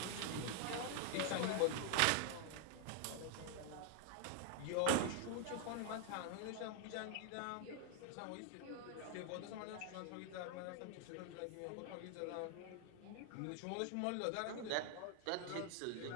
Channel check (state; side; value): different; both; correlation 0.00